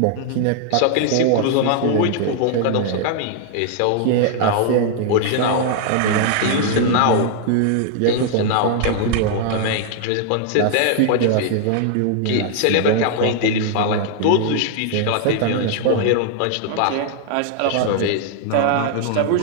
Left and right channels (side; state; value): both; different; correlation 0.00